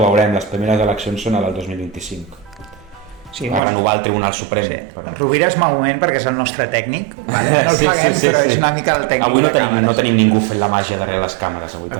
veurem, les primeres eleccions són a del 2025. Sí, va renovar el Tribunal Suprem. Sí. Rovira és malament perquè és el nostre tècnic, vale? No el paguem, però és una mica el tècnic. Avui no tenim ningú fent la màgia darrere les càmeres.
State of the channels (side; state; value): left; drops out; at 3.6 s